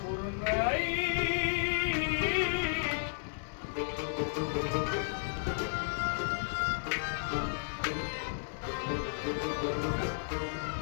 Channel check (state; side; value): silent; right; digital silence